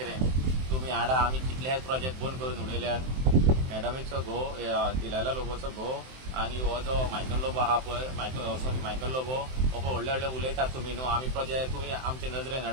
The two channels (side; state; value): left; late; 23 ms